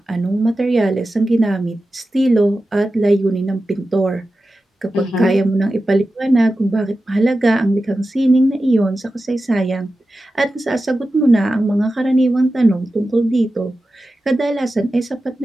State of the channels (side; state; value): both; normal; correlation 0.93